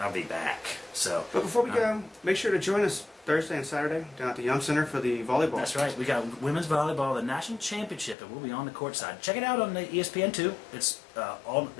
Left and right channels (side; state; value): right; drops out; at 8.2 s